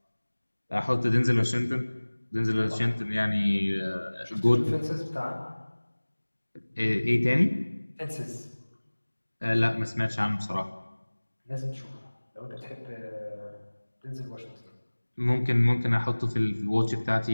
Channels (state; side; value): inverted; both; correlation -1.00